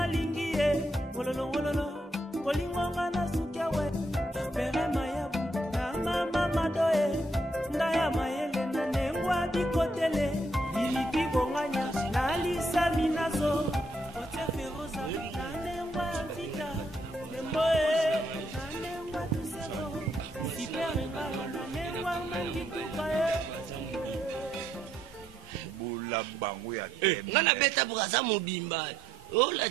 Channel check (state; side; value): normal; both; correlation 0.74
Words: lingi ye. Wololo bolingo ngana sukia we. Pere mayabu na mama doye. Ndaya mayele na nengwa bikotele. Ilipi bonganya na lisa mina. la bango ya ngana beta braza mobimba oh la